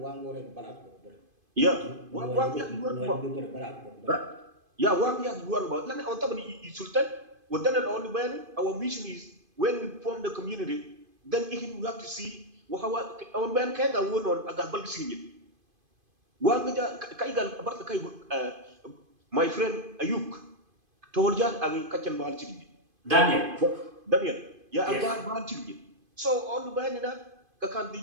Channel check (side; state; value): left; late; 2.5 ms